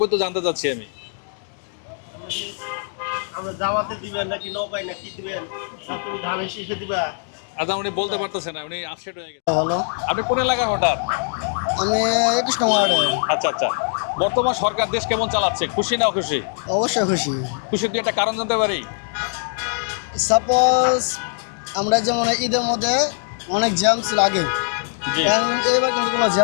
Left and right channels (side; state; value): right; silent; 61 dB below the other